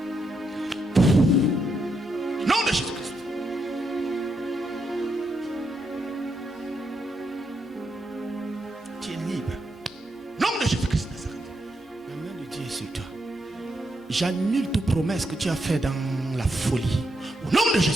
Au nom de Jésus-Christ. Tu es libre. Au nom de Jésus-Christ Nazareth. La main de Dieu est sur toi. J'annule toute promesse que tu as faite dans la folie. Au nom de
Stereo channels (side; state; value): both; normal; correlation 0.81